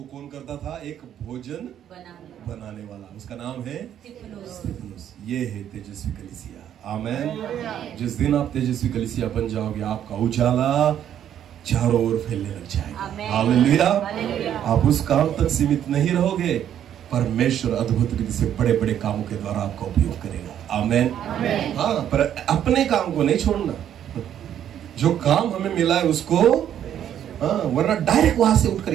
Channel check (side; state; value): left; quieter; 10.2 dB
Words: कौन करता था? एक भोजन बनाने वाला, उसका नाम है स्तेफनुस। ये है तेजस्वी कलीसिया। आमीन। जिस दिन आप तेजस्वी कलीसिया बन जाओगे, आपका उजाला चारों ओर फैलने लग जाएगा। हालेलुया। आप उस काम तक सीमित नहीं रहोगे, परमेश्वर अद्भुत रीति से बड़े बड़े कामों के द्वारा आपका उपयोग करेगा। आमीन। हाँ, पर अपने काम को नहीं छोड़ना। जो काम हमें मिला है उसको, हाँ, वरना डायरेक्ट वहां से उठकर